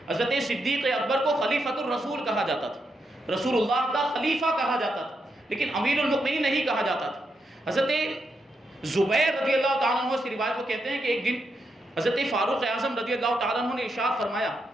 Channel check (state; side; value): normal; both; correlation 0.82